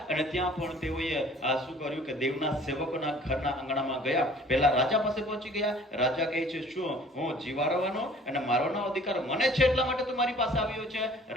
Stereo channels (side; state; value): both; normal; correlation 0.51